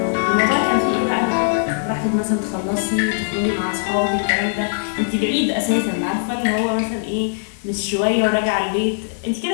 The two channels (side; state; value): right; silent; digital silence